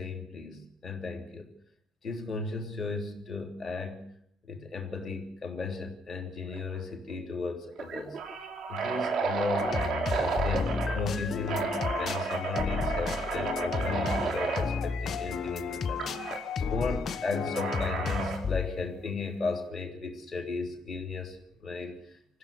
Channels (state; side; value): normal; both; correlation 0.70